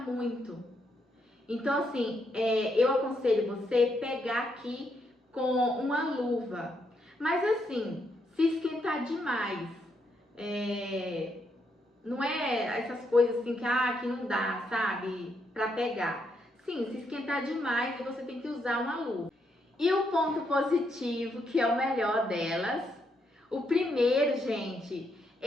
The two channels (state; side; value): normal; both; correlation 0.77